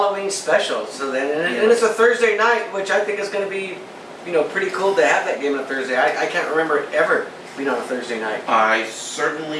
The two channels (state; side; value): identical; both; correlation 1.00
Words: special. So then, and it's a Thursday night, which I think is going to be, pretty cool to have that game on a Thursday. I can't remember it ever being on a Thursday night. I